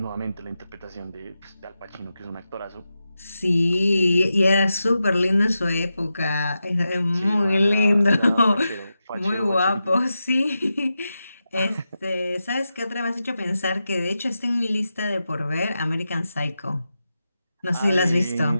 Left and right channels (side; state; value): both; inverted; correlation -0.90